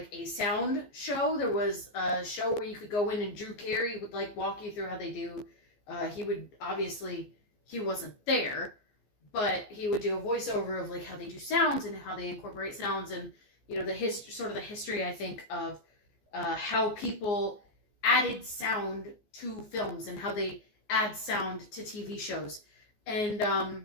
a sound show. There was a show where you could go in and Drew Carey would like walk you through how they do. He wasn't there, but he would do a voiceover of like how they do sounds and how they incorporate sounds, and you know the history I think of how people added sound to films and how they add sound to TV shows. And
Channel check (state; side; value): late; right; 14 ms